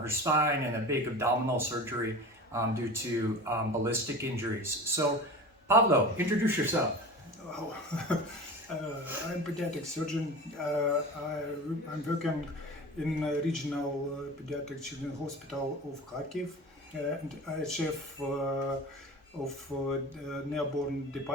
spine and a big abdominal surgery due to ballistic injuries. So, Pablo, introduce yourself. Wow. I'm a pediatric surgeon. I'm working in a regional pediatric children's hospital of Kharkiv, and I'm chef of newborn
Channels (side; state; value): both; normal; correlation 0.34